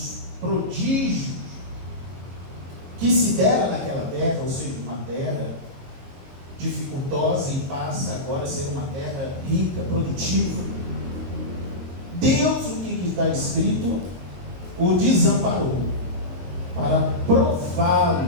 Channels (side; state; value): left; late; 22 ms